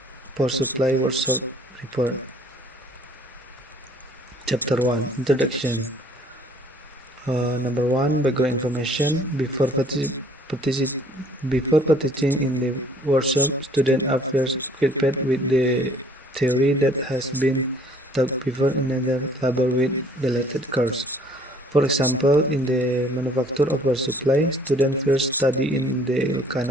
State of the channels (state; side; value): normal; both; correlation 0.57